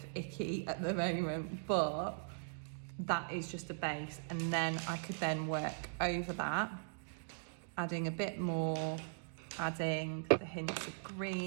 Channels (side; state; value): left; silent; digital silence